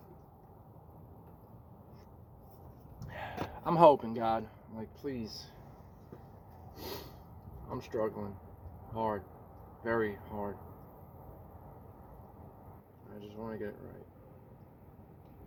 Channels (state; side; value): identical; both; correlation 1.00